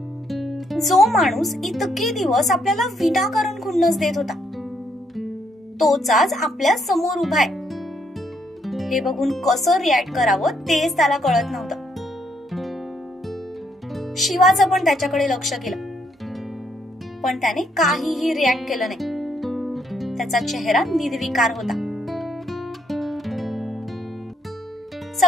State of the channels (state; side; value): normal; both; correlation 0.73